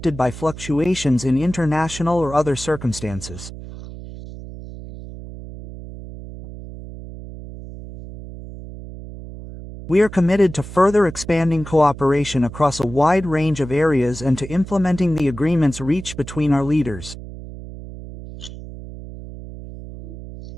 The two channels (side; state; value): right; noise; hum, 13 dB below the sound